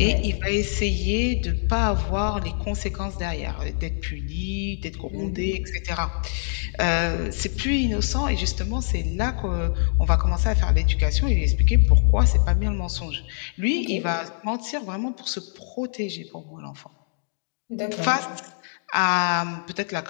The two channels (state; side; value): silent; right; 62 dB below the other